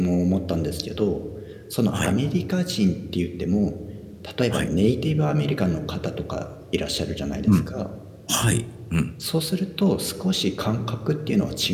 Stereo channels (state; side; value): identical; both; correlation 1.00